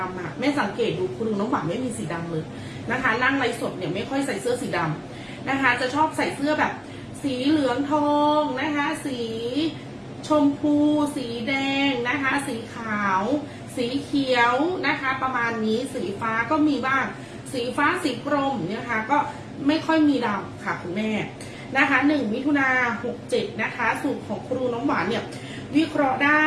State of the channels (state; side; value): identical; both; correlation 1.00